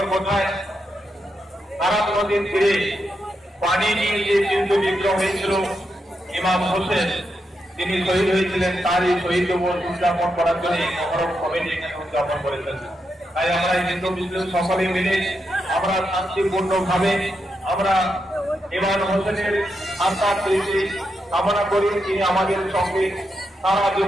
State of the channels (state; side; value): normal; both; correlation 0.84